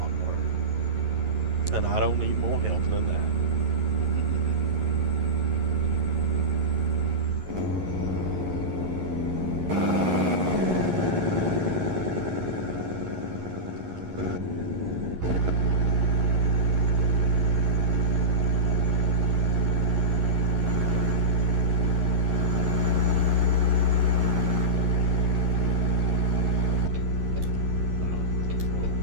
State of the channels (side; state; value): left; late; 11 ms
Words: more. And I don't need more help than that.